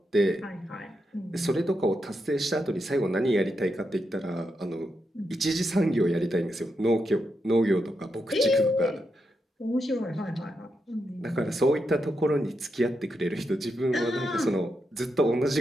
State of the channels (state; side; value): normal; both; correlation 0.84